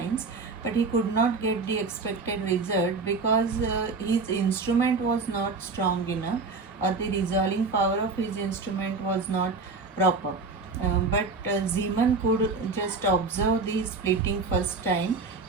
but he could not get the expected result because his instrument was not strong enough, or the resolving power of his instrument was not proper. But Zeeman could just observe the splitting first time.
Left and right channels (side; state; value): left; quieter; 4.1 dB